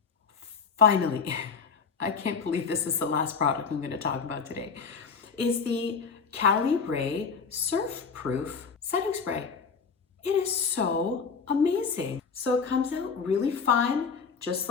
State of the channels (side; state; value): right; quieter; 5.5 dB